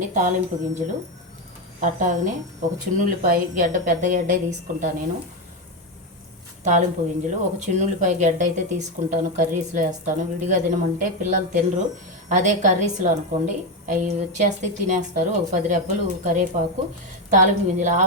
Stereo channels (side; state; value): both; normal; correlation 0.10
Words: తాలింపు గింజలు, అట్టాగనే ఒక చిన్నుల్లిపాయ గడ్డ, పెద్ద గడ్డ తీసుకుంటాను నేను. తాలింపు గింజలు ఒక చిన్నుల్లిపాయ గడ్డ అయితే తీసుకుంటాను, కర్రీస్లో వేస్తాను. విడిగా తినమంటే పిల్లలు తినరు, అదే కర్రీస్లో అనుకోండి అవి వచ్చేస్తే తినేస్తారు. ఒక 10 రెబ్బలు కరివేపాకు, తాలింపు గింజలు,